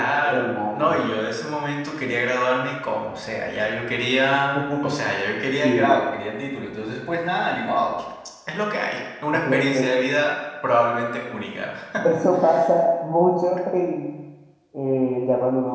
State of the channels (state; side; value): identical; both; correlation 1.00